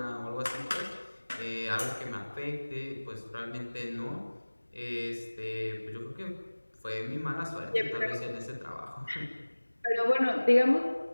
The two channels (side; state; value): both; inverted; correlation -1.00